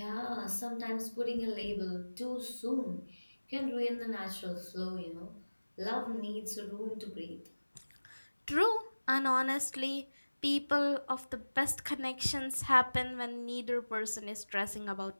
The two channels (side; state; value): both; inverted; correlation -1.00